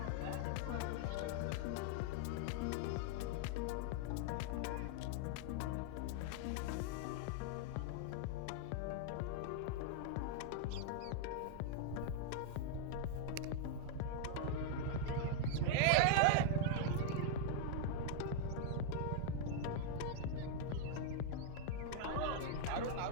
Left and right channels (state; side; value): different; both; correlation 0.00